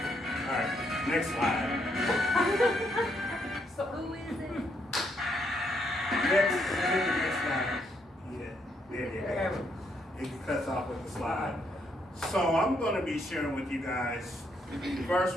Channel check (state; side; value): normal; both; correlation 0.74